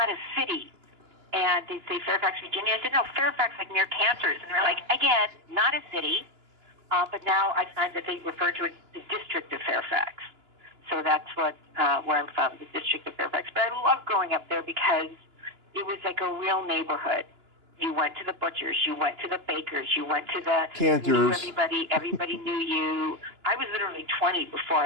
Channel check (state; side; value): late; left; 2.9 ms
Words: a city. And they'd say Fairfax, Virginia. I said, no, Fairfax, like near Kansas. And they're like, again, not a city. But now I find that they refer to it the district of Fairfax. So that's where I'm from, the district of Fairfax. But I loved growing up there because it was like a real neighborhood. You went to the butchers, you went to the bakers, you went to the Cantors. Everybody knew you. I was literally 20 before